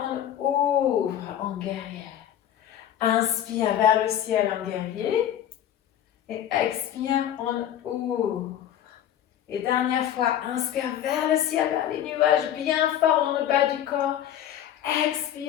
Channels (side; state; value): right; quieter; 10.8 dB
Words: on ouvre en guerrière. Inspire vers le ciel en guerrier. Et expire, on ouvre. Et dernière fois, inspire vers le ciel, vers les nuages, bien fort dans le bas du corps.